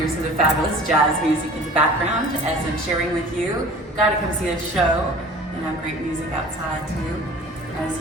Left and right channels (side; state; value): both; normal; correlation 0.44